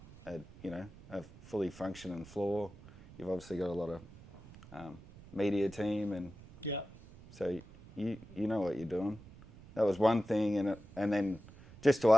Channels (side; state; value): right; noise; rumble, 19 dB below the sound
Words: fully functioning floor. You've obviously got a lot of media team, and Yeah. so you know what you're doing. That was one thing, and then just to